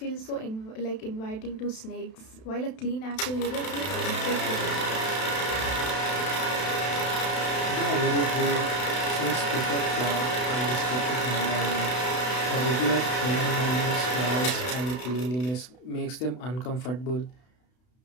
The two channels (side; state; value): right; late; 32 ms